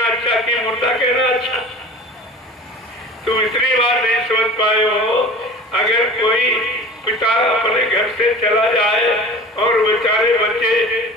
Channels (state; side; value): normal; both; correlation 0.40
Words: अच्छा कि मुर्दा कहना अच्छा? तुम इतनी बात नहीं समझ पाए हो। अगर कोई पिता अपने घर से चला जाए और बेचारे बच्चे